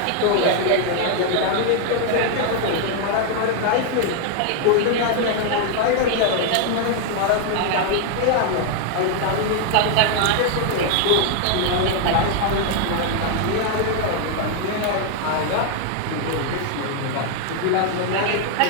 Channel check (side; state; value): both; different; correlation 0.00